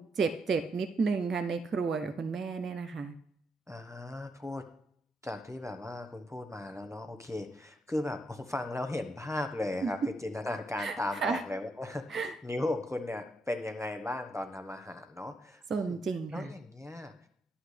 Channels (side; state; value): both; normal; correlation 0.79